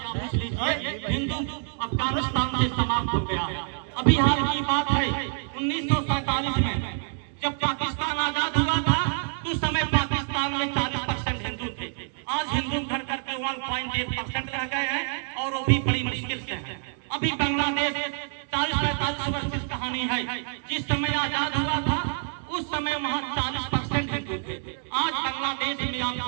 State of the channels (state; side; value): silent; left; 60 dB below the other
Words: पूछ लीजिए, हिंदू अफगानिस्तान से समाप्त हो गया है। अभी हाल की बात है 1947 में जब पाकिस्तान आजाद हुआ था तो उस समय पाकिस्तान में 40% हिंदू थे। आज हिंदू घट करके 1.8% रह गए हैं और वो भी बड़ी मुश्किल से है। अभी बांग्लादेश 40-45 वर्ष की कहानी है। जिस समय आजाद हुआ था उस समय वहाँ 40% हिंदू थे। आज बांग्लादेश में आप